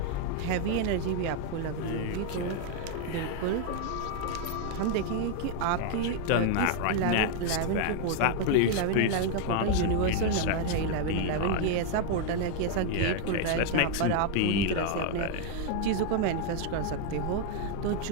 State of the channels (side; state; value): both; different; correlation 0.00